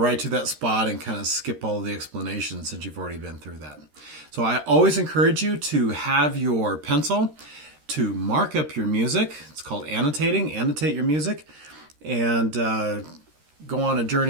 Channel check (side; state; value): left; late; 13 ms